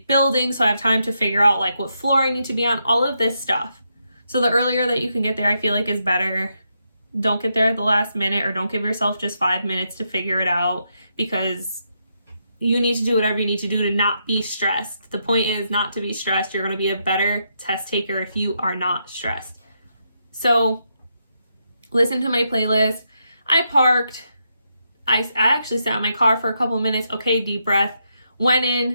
building, so I have time to figure out like what floor I need to be on, all of this stuff. So the earlier that you can get there, I feel like is better. Don't get there at the last minute, or don't give yourself just 5 minutes to figure it out, because you need to do whatever you need to do to not be stressed. The point is not to be stressed. You're going to be a better test taker if you are not stressed. So listen to my playlist. I parked. I actually sat in my car for a couple minutes. Okay, deep breath. Went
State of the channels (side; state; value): both; inverted; correlation -0.81